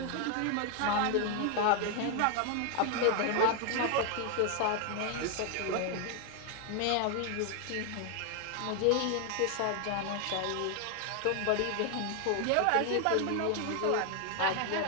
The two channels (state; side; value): different; both; correlation 0.00